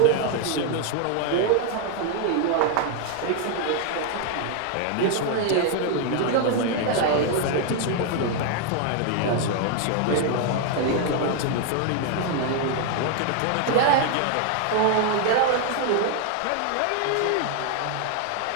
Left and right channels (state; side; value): different; both; correlation 0.00